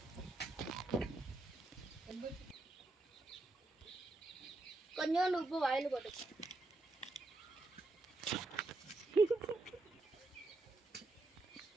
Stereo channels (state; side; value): quieter; left; 3.1 dB